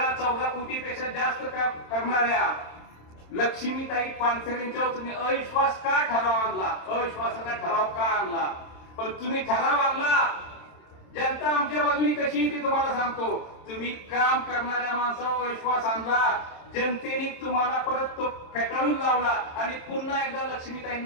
कोटीपेक्षा जास्त करणाऱ्या लक्ष्मीताई पानसरेंच्यावर तुम्ही अविश्वास का ठराव आणला, अविश्वासाचा ठराव का आणला? पण तुम्ही ठराव आणला, जनता आमच्या बाजूने कशी ती तुम्हाला सांगतो. तुम्ही काम करणाऱ्या माणसावर विश्वास आणला, जनतेने तुम्हाला परत तो फेटाळून लावला आणि पुन्हा एकदा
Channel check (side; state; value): right; late; 27 ms